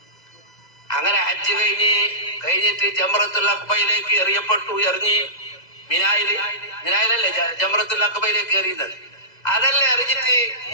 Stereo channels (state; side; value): late; right; 2.0 ms